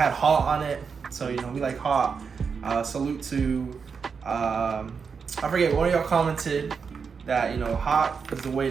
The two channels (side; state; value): left; quieter; 5.8 dB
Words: hot on it. So we like hot. Salute to I forget, one of y'all commented that hot is the way